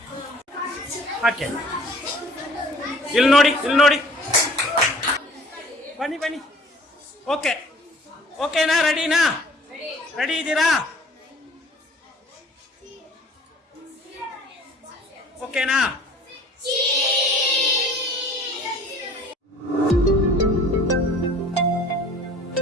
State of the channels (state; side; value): normal; both; correlation 0.50